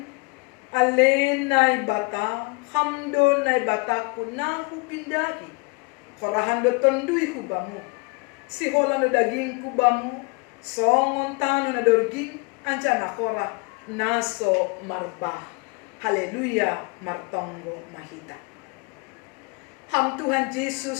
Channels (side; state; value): right; quieter; 30.4 dB